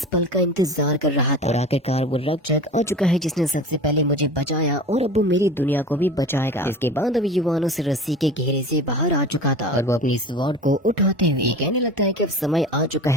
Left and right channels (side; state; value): both; normal; correlation 0.35